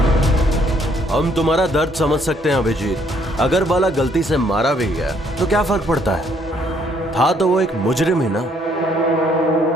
हम तुम्हारा दर्द समझ सकते हैं अभिजीत। अगर बाला गलती से मारा भी गया तो क्या फर्क पड़ता है, था तो वो एक मुजरिम ही ना।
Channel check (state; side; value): normal; both; correlation 0.67